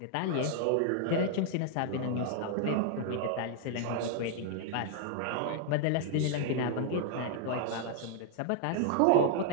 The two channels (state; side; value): different; both; correlation -0.01